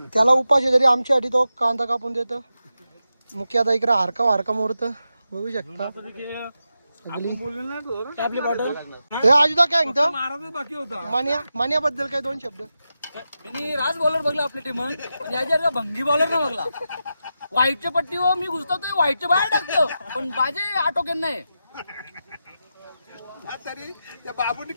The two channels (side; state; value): both; inverted; correlation -0.89